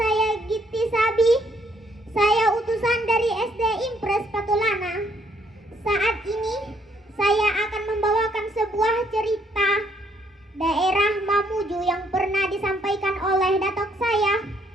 Gitti Sabi. Saya utusan dari SD Impres Patulana. Saat ini saya akan membawakan sebuah cerita daerah Mamuju yang pernah disampaikan oleh datuk saya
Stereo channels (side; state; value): both; normal; correlation 0.69